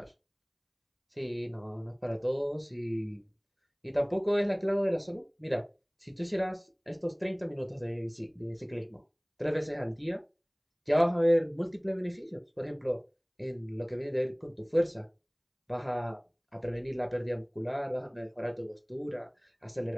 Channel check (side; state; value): both; identical; correlation 1.00